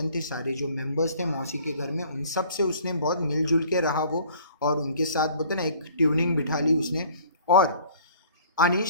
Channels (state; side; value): inverted; both; correlation -0.53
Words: थे, सारे जो मेंबर्स थे मौसी के घर में, उन सब से उसने बहुत मिलजुल के रहा वो, और उनके साथ बोलते ना एक ट्यूनिंग बिठा ली उसने. और आणि